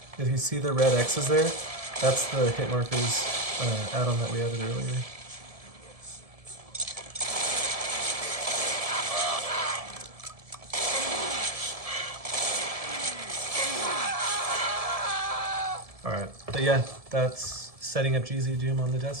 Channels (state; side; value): late; left; 1.7 ms